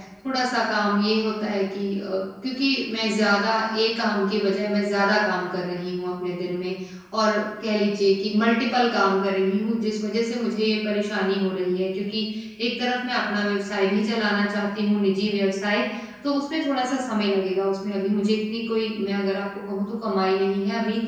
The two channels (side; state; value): both; identical; correlation 1.00